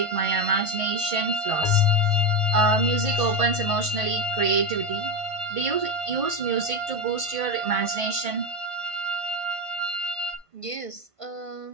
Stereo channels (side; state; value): right; late; 1.5 ms